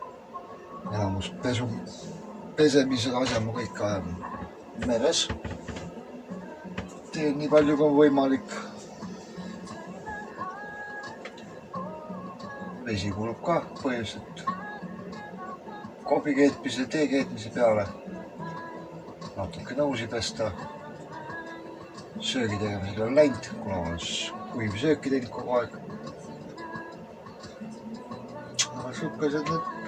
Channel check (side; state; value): both; identical; correlation 1.00